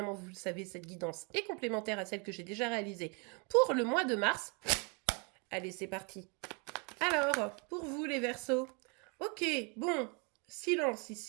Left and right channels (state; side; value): quieter; left; 33.1 dB